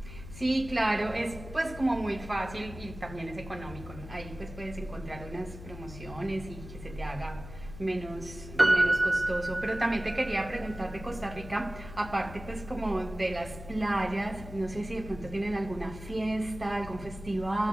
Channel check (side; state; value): left; noise; hum, 13 dB below the sound